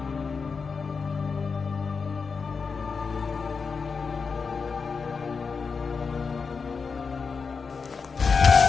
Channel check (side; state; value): right; quieter; 5.2 dB